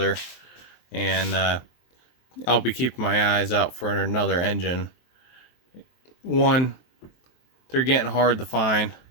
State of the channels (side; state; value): right; late; 23 ms